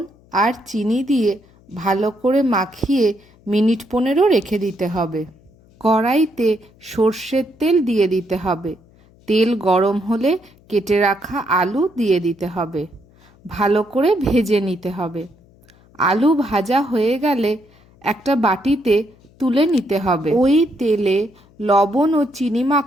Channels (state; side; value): noise; left; hum, 29 dB below the sound